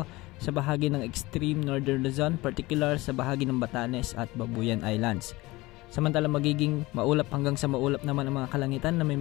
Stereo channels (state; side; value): quieter; right; 20.8 dB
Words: sa bahagi ng extreme northern Luzon, particular sa bahagi ng Batanes at Babuyan Islands. Samantala magiging maulap hanggang sa maulap naman ang mga kalangitan na may